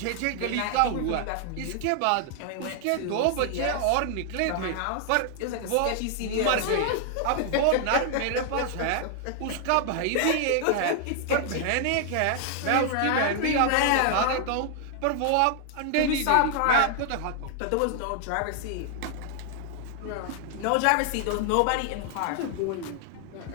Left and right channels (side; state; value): both; different; correlation 0.00